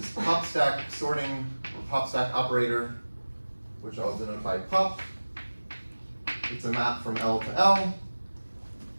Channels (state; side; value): inverted; both; correlation -1.00